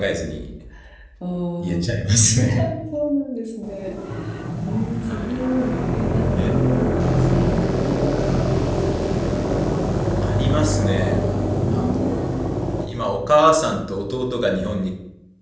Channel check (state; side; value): identical; both; correlation 1.00